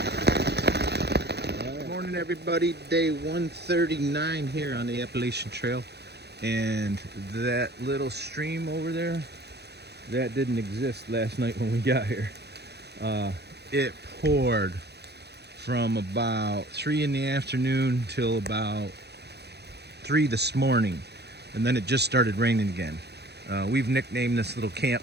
Good morning, everybody. Day 139 here on the Appalachian Trail. And that little stream over there, that didn't exist last night when we got here. It poured from about 3 in the afternoon till about 3 this morning, and then it just started raining again. We've nicknamed this little camp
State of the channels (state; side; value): late; left; 0.48 ms